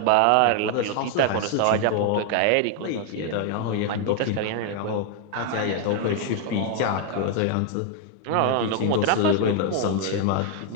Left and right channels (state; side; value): different; both; correlation 0.00